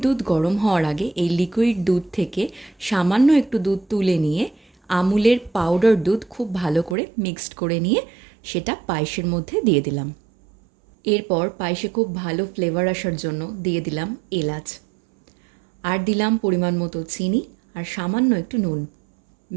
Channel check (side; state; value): left; drops out; at 7.0 s